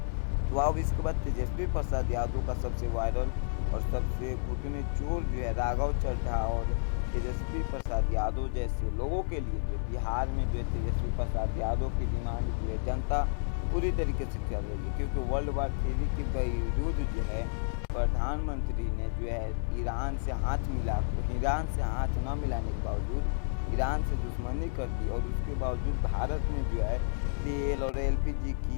तो अब इसके बाद तेजस्वी प्रसाद यादव का सबसे वायरल और सबसे घुटने चोर जो है राघव चड्ढा और तेजस्वी प्रसाद यादव जैसे लोगों के लिए जो बिहार में जो है तेजस्वी प्रसाद यादव की डिमांड जो है जनता पूरी तरीके से कर रही है, क्योंकि वर्ल्ड वार 3 के बावजूद जो है प्रधानमंत्री ने जो है ईरान से हाथ न मिलाने के बावजूद ईरान से दुश्मनी कर दी, और उसके बावजूद भारत में जो है तेल और LPG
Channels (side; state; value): right; silent; digital silence